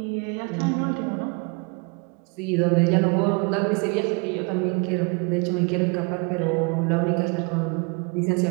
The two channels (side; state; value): left; quieter; 32.3 dB